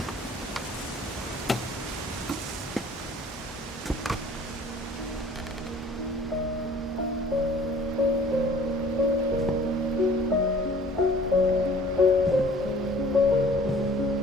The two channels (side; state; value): both; normal; correlation 0.51